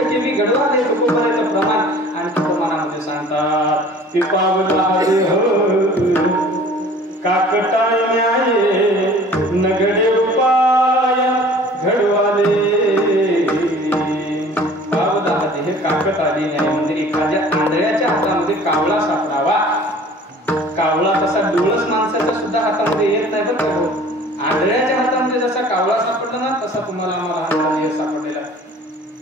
गडवाले तुकोबाराचं प्रमाण आणखी प्रमाणामध्ये सांगतात की पावला काकटाय न्याये नगडे उपाय घडवाले. पावला हे काकट आली न्याय म्हणजे एखाद्या आंधळ्याच्या हातामध्ये कावळा सापडावा. कावळा तसा डोळस माणसाच्या सुद्धा हातामध्ये येत नाही बरं का. आंधळ्याच्या हातामध्ये जसा कावळा सापडला ना तसा तुम्हाला आम्हाला हातामध्ये सापडलेला.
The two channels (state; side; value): normal; both; correlation 0.48